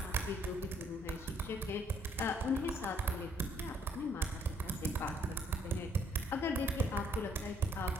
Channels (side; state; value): both; normal; correlation 0.66